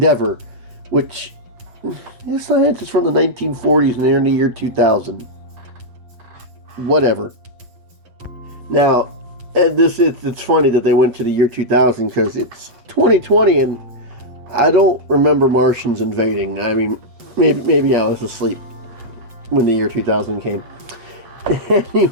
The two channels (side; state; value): left; late; 8.0 ms